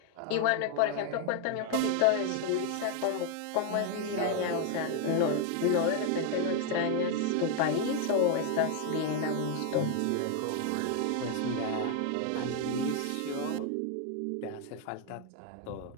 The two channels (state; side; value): different; both; correlation 0.00